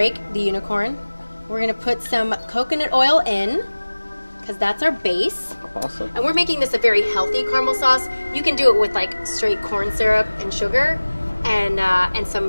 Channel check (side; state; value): both; inverted; correlation -1.00